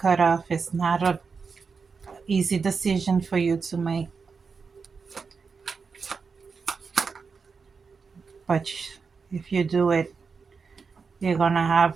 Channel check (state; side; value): quieter; left; 5.2 dB